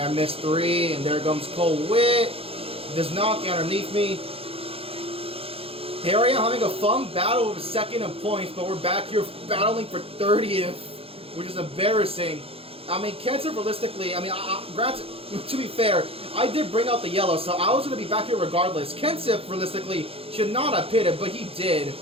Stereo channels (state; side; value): late; left; 0.28 ms